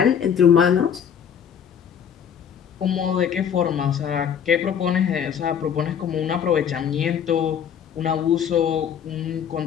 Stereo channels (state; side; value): quieter; right; 8.2 dB